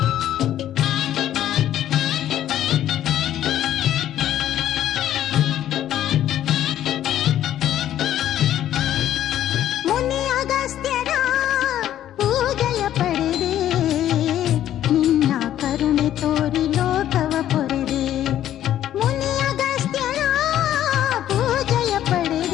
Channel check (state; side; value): quieter; right; 11.8 dB